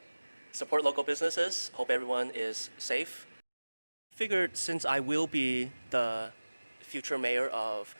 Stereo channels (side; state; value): both; inverted; correlation -1.00